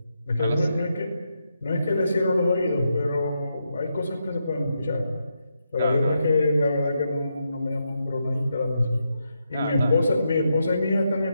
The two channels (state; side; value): inverted; both; correlation -0.83